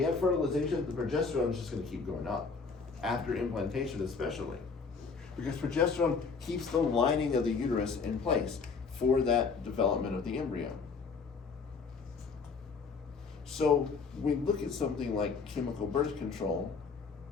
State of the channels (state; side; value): quieter; right; 4.9 dB